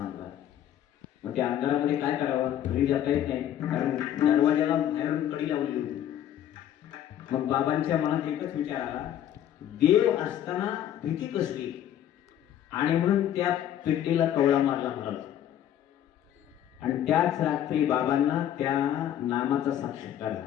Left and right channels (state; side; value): quieter; right; 11.0 dB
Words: मग त्या अंधारामध्ये काय करावं, घरी जाता येत नाही, कारण दरवाजाला बाहेरून कडी लावलेली होती. मग बाबांच्या मनात एकच विचार आला, देव असताना भीती कसली, आणि म्हणून त्या पेटीला कवळा मारला महाराज. आणि त्याच रात्री बाबांना त्या नामाचा साक्षात्कार